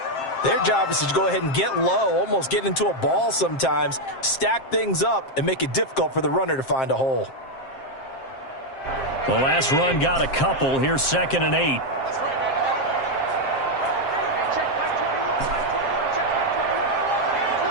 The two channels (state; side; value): late; right; 7.5 ms